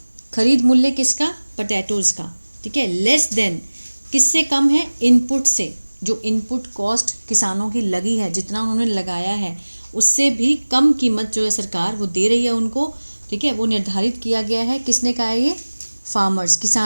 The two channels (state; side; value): inverted; both; correlation -1.00